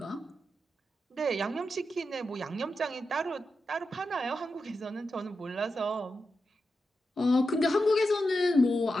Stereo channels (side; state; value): both; normal; correlation 0.89